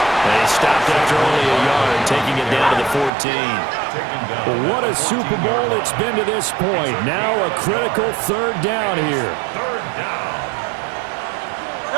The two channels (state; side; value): drops out; left; at 3.1 s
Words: They stopped after only a yard, taking it down to the 14. Well, what a Super Bowl it's been to this point. Now a critical 3rd down here. 3rd down.